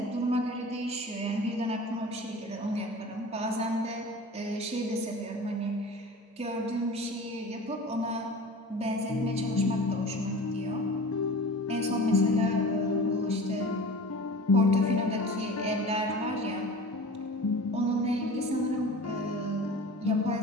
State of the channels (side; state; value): both; normal; correlation 0.38